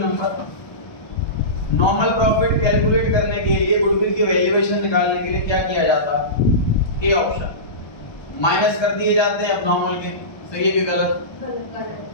number, normal profit calculate करने के लिए गुडविल की वैल्यूएशन निकालने के लिए क्या किया जाता है? ए ऑप्शन, माइनस कर दिए जाते हैं एबनॉर्मल के। सही है कि गलत?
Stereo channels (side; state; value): right; late; 1.2 ms